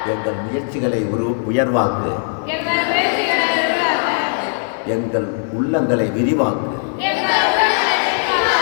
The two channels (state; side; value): silent; right; digital silence